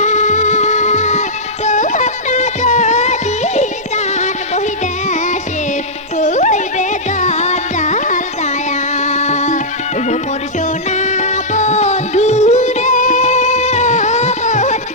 তোমরা যদি দান বহি দেশে হইবে গন্ডাল যায়া ও মোর সোনা বন্ধু রে ও মোর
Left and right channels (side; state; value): both; normal; correlation -0.10